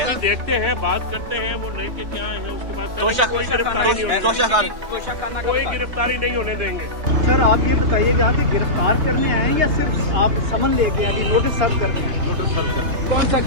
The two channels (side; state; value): left; late; 3.3 ms